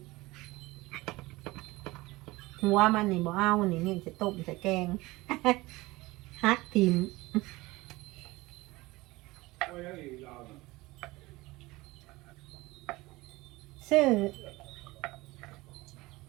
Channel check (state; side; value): quieter; left; 20.6 dB